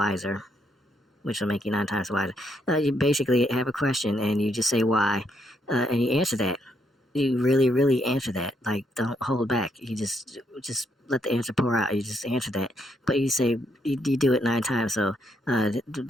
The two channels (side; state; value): both; normal; correlation 0.76